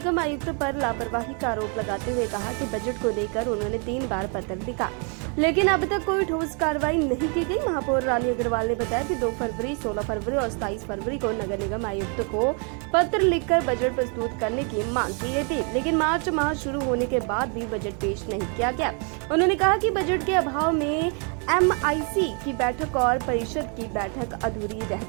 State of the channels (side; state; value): left; quieter; 38.0 dB